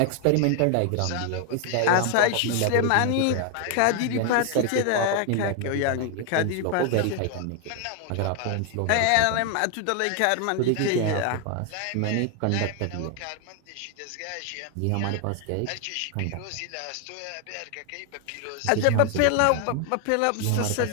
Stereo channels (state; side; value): different; both; correlation 0.00